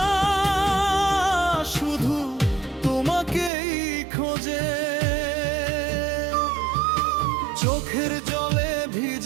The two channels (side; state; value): left; drops out; at 3.5 s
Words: শুধু তোমাকেই খোঁজে। চোখের জলে